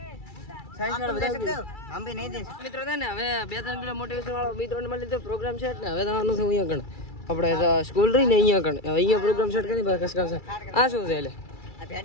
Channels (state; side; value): late; right; 2.3 ms